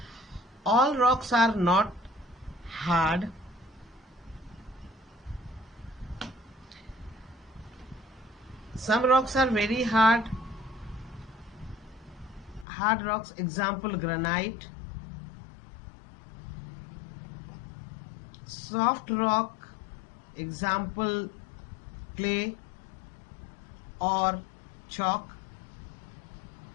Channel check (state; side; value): drops out; right; at 12.7 s